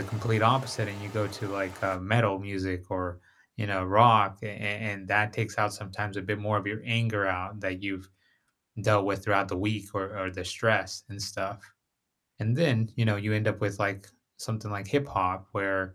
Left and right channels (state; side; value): identical; both; correlation 1.00